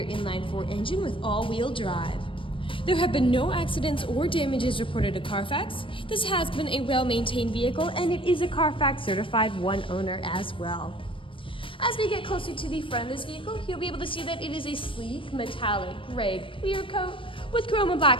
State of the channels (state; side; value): late; right; 0.25 ms